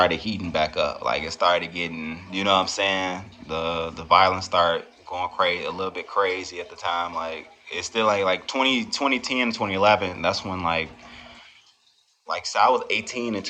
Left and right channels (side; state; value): both; identical; correlation 1.00